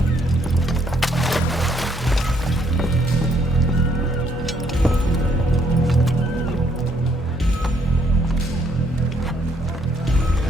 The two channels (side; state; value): both; normal; correlation 0.69